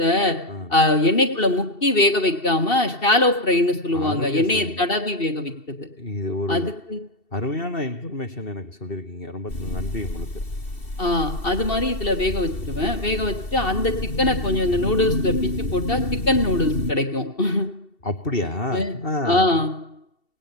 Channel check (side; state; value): right; late; 2.7 ms